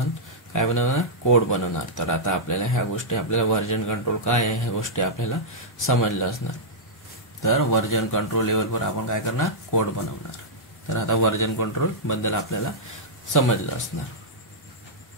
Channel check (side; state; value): both; normal; correlation -0.09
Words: काय बनवणार, कोड बनवणार. तर आता आपल्याला ह्या गोष्टी, आपल्याला व्हर्जन कंट्रोल काय आहे ह्या गोष्टी आपल्याला समजल्या असणार. तर व्हर्जन कंट्रोल लेवलवर आपण काय करणार, कोड बनवणार. तर आता व्हर्जन कंट्रोल बद्दल आपल्याला समजलं असणार.